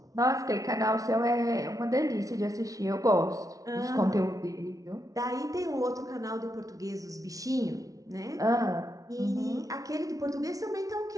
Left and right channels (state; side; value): late; left; 0.17 ms